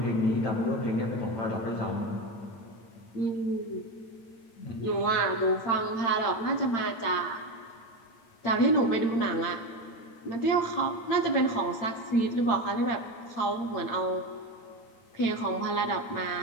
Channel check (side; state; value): right; late; 8.8 ms